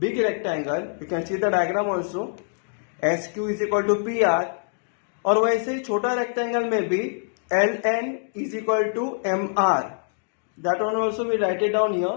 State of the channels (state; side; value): silent; right; digital silence